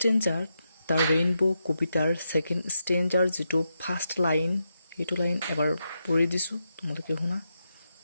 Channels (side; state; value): both; inverted; correlation -0.84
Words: দ্য ৰেইনবো কবিতাৰ ছেকেণ্ড ষ্টেঞ্জাৰ যিটো ফাৰ্ষ্ট লাইন, সেইটো লাইন এবাৰ পঢ়ি দিছোঁ, তোমালোকে শুনা।